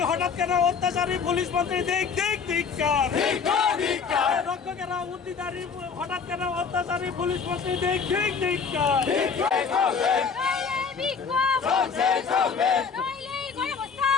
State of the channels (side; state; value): right; quieter; 5.8 dB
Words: হঠাৎ কেন অত্যাচারী পুলিশ মন্ত্রী দেখ দেখ ধিক্কার। রক্ষকেরা উদ্দিদারি হঠাৎ কেন অত্যাচারী পুলিশ মন্ত্রী দেখ দেখ ধিক্কার।